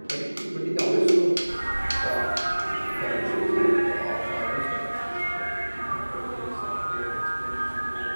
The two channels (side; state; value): both; inverted; correlation -1.00